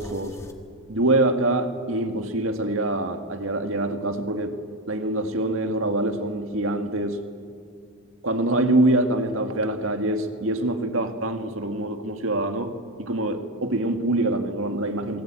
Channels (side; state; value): both; normal; correlation 0.14